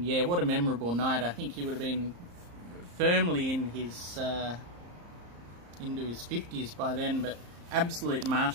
yeah, what a memorable night. I think he would have been firmly in his into his 50s by then, but absolute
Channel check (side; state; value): left; late; 34 ms